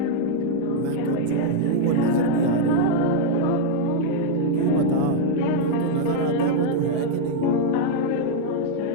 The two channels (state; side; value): different; both; correlation 0.00